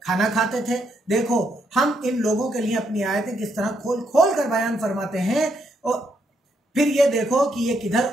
खाना खाते थे। देखो, हम इन लोगों के लिए अपनी आयतें किस तरह खोल खोल कर बयान फरमाते हैं, और फिर ये देखो कि ये किधर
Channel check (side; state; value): both; normal; correlation 0.76